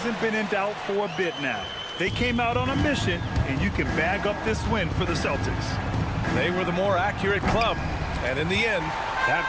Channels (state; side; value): identical; both; correlation 1.00